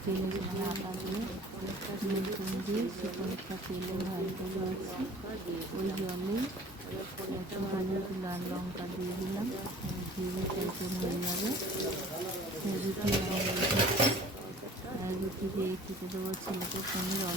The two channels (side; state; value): both; normal; correlation 0.48